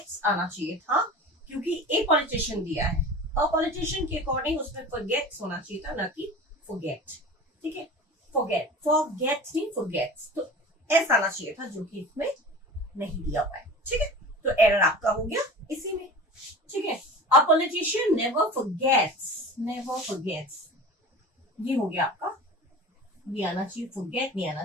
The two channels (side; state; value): both; normal; correlation 0.36